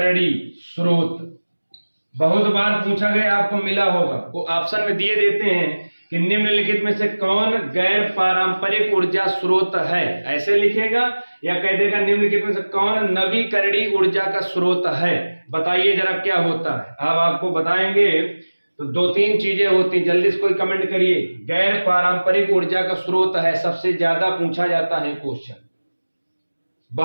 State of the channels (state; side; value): inverted; both; correlation -1.00